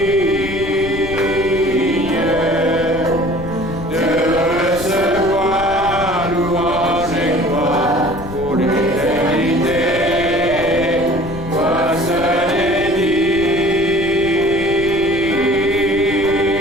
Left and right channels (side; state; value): left; noise; rumble, 12 dB below the sound